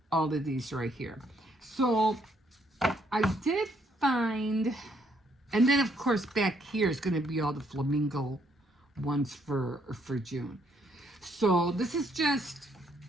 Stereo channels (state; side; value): normal; both; correlation 0.71